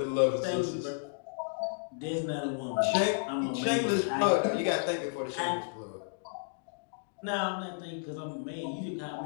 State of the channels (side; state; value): right; silent; digital silence